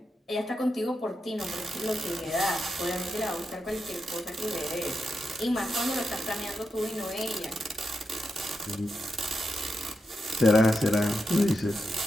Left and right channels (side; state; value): both; normal; correlation 0.87